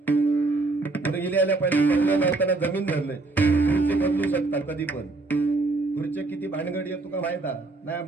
गेले आल्या पहिले बंगला नव्हताना जमीन धरलंय, खुर्ची बदलू शकता कधी पण. खुर्ची किती भानगडी आहे तुका माहित नाही.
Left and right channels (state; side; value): quieter; left; 3.3 dB